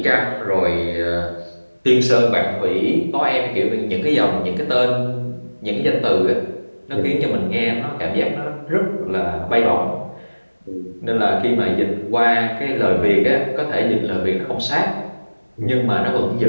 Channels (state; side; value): inverted; both; correlation -1.00